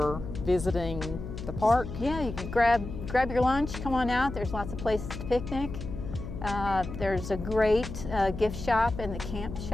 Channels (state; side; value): noise; left; hum, 8 dB below the sound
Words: visiting the park. Yeah, you can grab your lunch, come on out. There's lots of places to picnic. There's a great gift shop in the camp